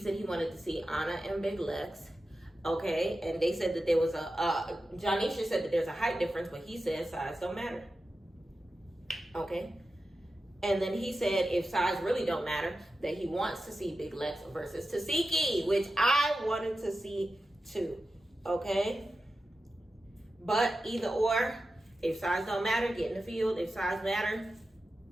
he wanted to see Anna and Big Lex. Okay, and they said that there was Jonisha said that there's a height difference, but he said size don't matter. Okay. And then he said if size really don't matter, that he wants to see Big Lex versus Tasiki, which I wanted to see too. Okay. But either or, if size don't matter, get in the field. If size matter,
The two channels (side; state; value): both; normal; correlation 0.92